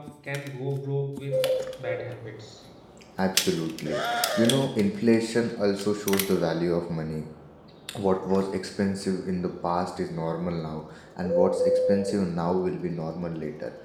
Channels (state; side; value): identical; both; correlation 1.00